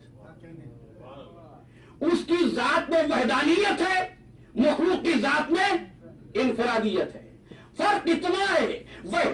اس کی ذات میں وحدانیت ہے، مخلوق کی ذات میں انفرادیت ہے۔ فرق اتنا ہے،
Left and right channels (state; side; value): identical; both; correlation 1.00